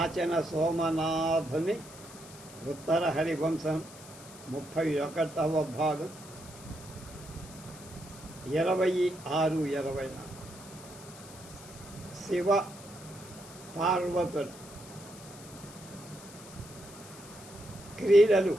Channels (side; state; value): left; noise; hiss, 18 dB below the sound